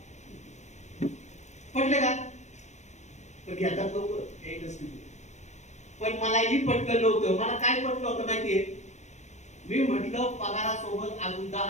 पटले का? पण घेतात लोक. पण मलाही पटलं नव्हतं. मला काय पटलं होतं माहितीये? मी म्हटलं पगारासोबत अजून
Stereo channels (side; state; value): right; late; 0.33 ms